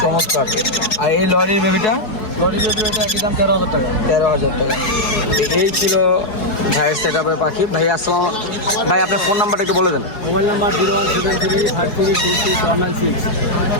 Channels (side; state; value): right; late; 4.7 ms